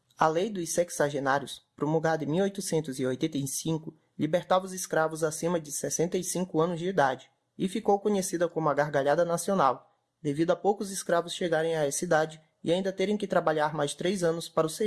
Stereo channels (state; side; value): identical; both; correlation 1.00